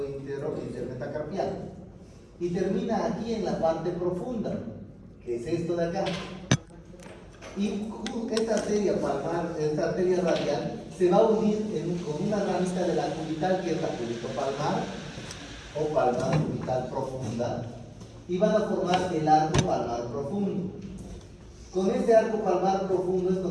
intermetacarpiano, y termina aquí en la parte profunda, que es esto de acá. Y esta arteria palmar, esta arteria radial, se va a unir con una ramita de la cubital, que es la cubitopalmar o palmar cubital profunda, y van a formar el arco palmar profundo. Con ese arco palmar profundo es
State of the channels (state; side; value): identical; both; correlation 1.00